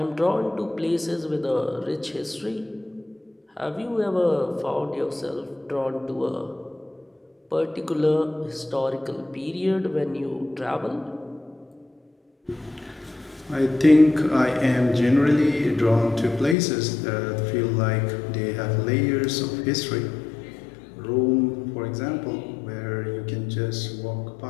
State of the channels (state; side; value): drops out; right; at 16.6 s